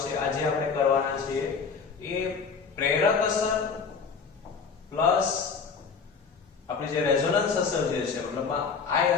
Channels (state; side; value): quieter; right; 5.5 dB